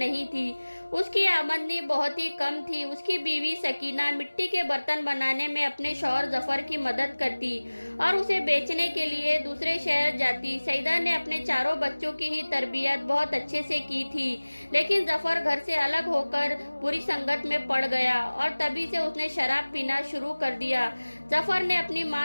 تھی، اس کی آمدنی بہت ہی کم تھی۔ اس کی بیوی سکینہ مٹی کے برتن بنانے میں اپنے شوہر ظفر کی مدد کرتی اور اسے بیچنے کے لیے دوسرے شہر جاتی۔ سیدہ نے اپنے چاروں بچوں کی ہی تربیت بہت اچھے سے کی تھی لیکن ظفر گھر سے الگ ہو کر بری سنگت میں پڑ گیا اور تبھی سے اس نے شراب پینا شروع کر دیا۔ ظفر نے اپنی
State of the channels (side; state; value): both; inverted; correlation -1.00